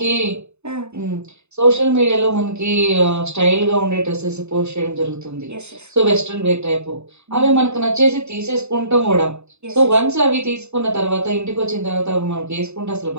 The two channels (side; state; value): left; late; 0.81 ms